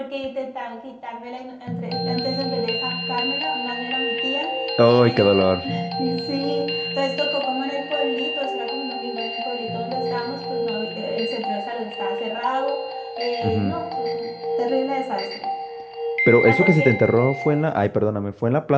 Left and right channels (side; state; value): both; identical; correlation 1.00